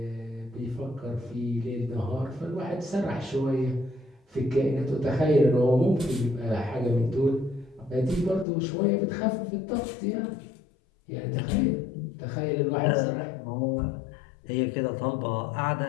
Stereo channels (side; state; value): right; drops out; at 8.5 s